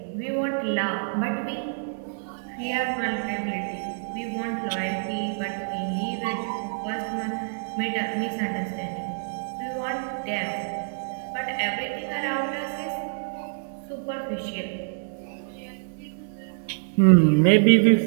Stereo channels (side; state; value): left; silent; 61 dB below the other